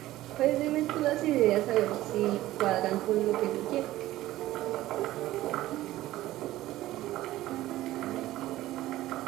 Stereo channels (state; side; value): quieter; left; 15.7 dB